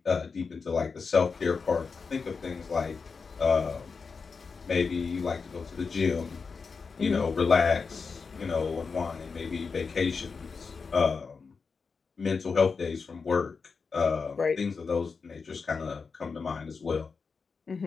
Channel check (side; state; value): right; quieter; 5.0 dB